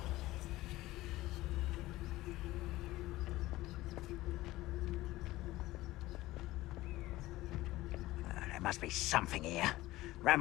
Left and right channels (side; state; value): right; quieter; 17.5 dB